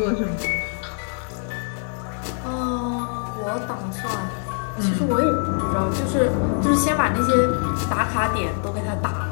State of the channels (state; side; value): silent; right; 57 dB below the other